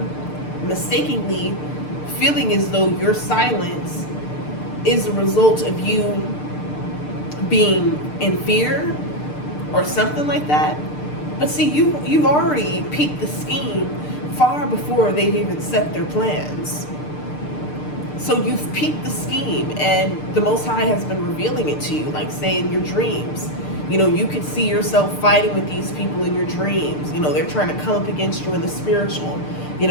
mistakenly feeling as though your silence is a result of you being in fear or something like that. But see, you've already peeped the scheme far before they've even set their plans. So you've peeped the scheme, and the Most High has been revealing it to you, like say in your dreams. You know, you could see yourself fighting with these people in your dreams. You know, they're trying to come up against you in the spiritual. You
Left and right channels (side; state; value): right; late; 6.7 ms